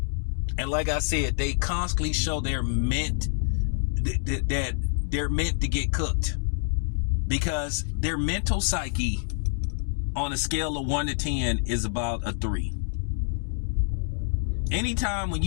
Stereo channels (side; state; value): right; silent; digital silence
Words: And like I said, they constantly show they're meant that they're meant to get cooked. Because their mental psyche on a scale of 1 to 10 is about a 3. Anytime when